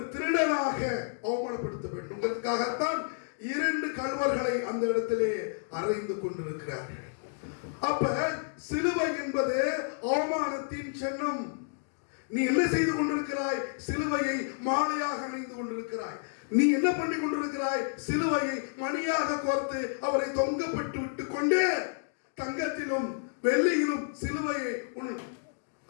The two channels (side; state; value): right; silent; digital silence